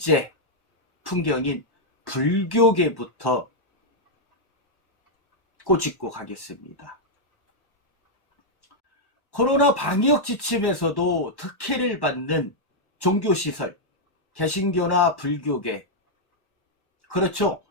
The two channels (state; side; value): late; right; 1.1 ms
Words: 풍경인 불교계부터 꼬집고 가겠습니다. 코로나 방역 지침에서도 특혜를 받는 종교시설, 개신교나 불교계, 그렇죠.